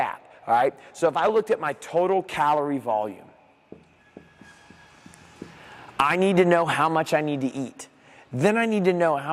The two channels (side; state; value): both; identical; correlation 1.00